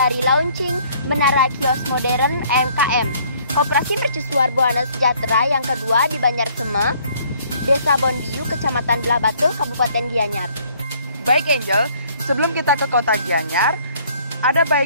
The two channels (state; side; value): inverted; both; correlation -0.60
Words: launching Menara Kios Modern MKM, Koperasi Mercusuar Buana Sejahtera yang kedua di Banyarsema, Desa Bonbiu, Kecamatan Belah Batu, Kabupaten Gianyar. Baik Angel, sebelum kita ke kota Gianyar, ada